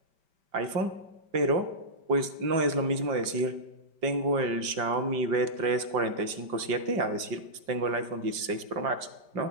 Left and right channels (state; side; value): late; left; 5.1 ms